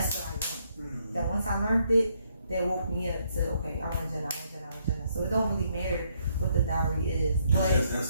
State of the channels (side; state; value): both; inverted; correlation -0.73